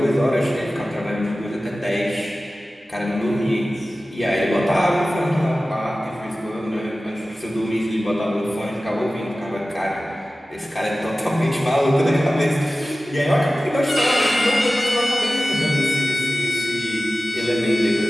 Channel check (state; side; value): normal; both; correlation 0.96